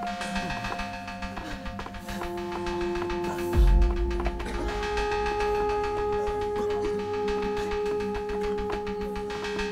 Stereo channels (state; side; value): identical; both; correlation 1.00